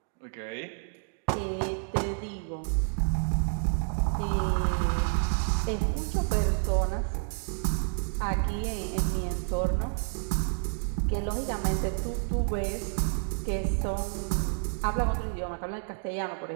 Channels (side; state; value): left; silent; 58 dB below the other